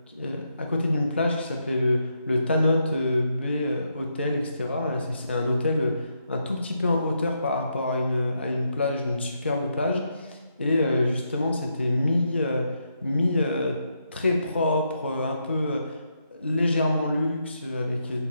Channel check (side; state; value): both; inverted; correlation -0.80